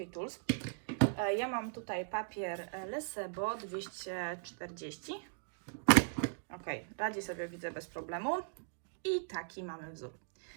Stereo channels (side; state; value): left; silent; digital silence